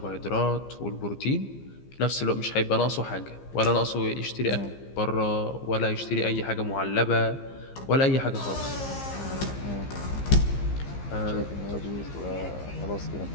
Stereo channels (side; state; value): right; late; 15 ms